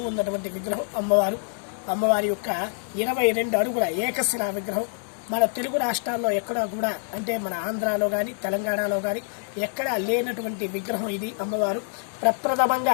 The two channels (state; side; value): silent; right; 61 dB below the other